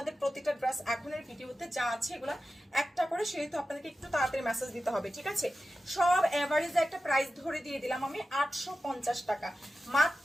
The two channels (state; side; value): normal; both; correlation 0.93